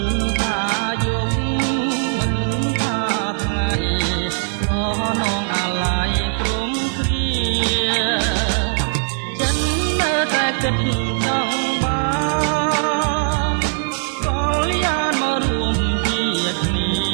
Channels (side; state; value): left; silent; digital silence